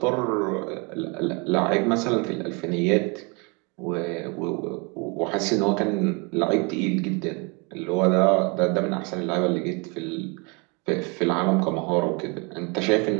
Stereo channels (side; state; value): left; quieter; 31.1 dB